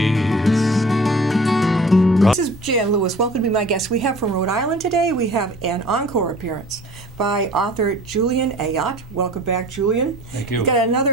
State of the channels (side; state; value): both; normal; correlation 0.46